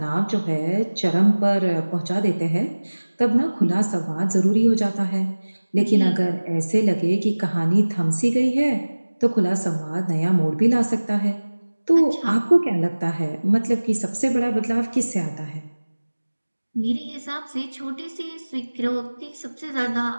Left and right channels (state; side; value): inverted; both; correlation -1.00